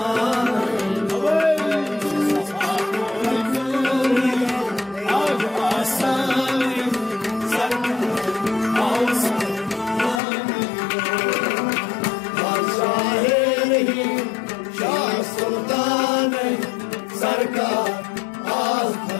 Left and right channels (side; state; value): right; drops out; at 10.2 s